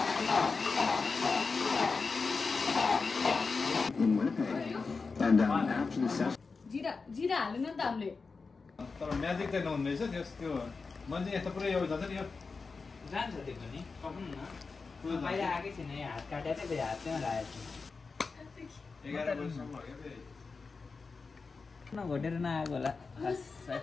जिरा जिरा हाल्नु नि त हामीले तर म्याजिक चाहिँ नहुँदैछ त्यो मान्छे यस्तो पुरै यो जान्छ नि यो जान्छ त्यो पनि पकाउनु न बाहिर आएकै छैन यहाँ हात काटेर चाहिँ हात त्यहाँ राखेको छु 11 वर्षसम्म हो क्या घटेर नआएको होला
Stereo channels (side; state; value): right; quieter; 4.5 dB